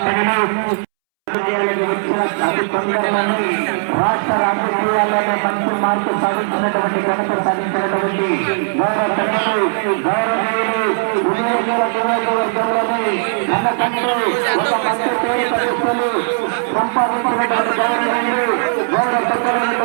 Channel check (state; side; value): silent; left; 67 dB below the other